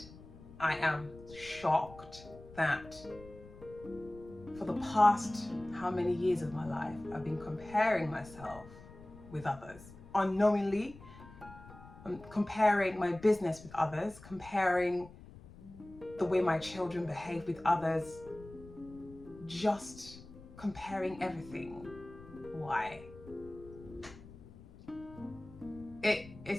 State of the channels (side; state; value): left; noise; rumble, 18 dB below the sound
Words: I am shocked that for the past how many years of my life I've been comparing myself with others unknowingly. I'm comparing my business with others, comparing the way my children behave with others, just comparing everything. Why?